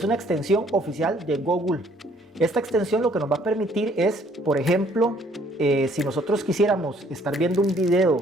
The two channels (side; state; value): both; normal; correlation 0.62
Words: una extensión oficial de Google. Esta extensión lo que nos va a permitir es, por ejemplo, si nosotros quisiéramos estar viendo un